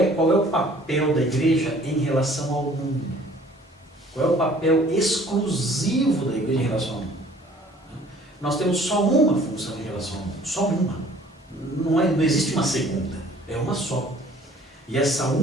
o papel da igreja em relação ao mundo? Qual é o papel exclusivo da igreja em relação ao mundo? Nós temos só uma função em relação ao mundo, só uma. Não existe uma segunda, é uma só. E essa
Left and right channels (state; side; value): normal; both; correlation 0.54